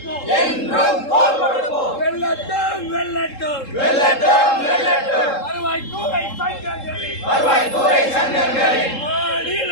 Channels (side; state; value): right; late; 3.7 ms